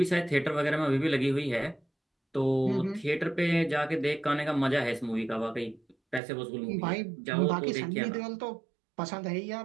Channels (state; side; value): drops out; left; at 6.2 s